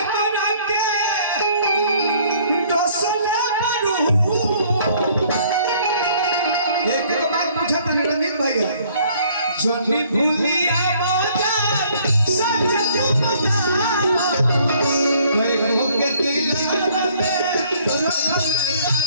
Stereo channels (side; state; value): both; inverted; correlation -0.60